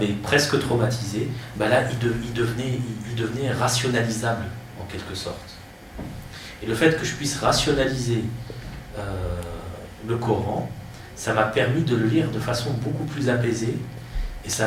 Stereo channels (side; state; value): both; identical; correlation 1.00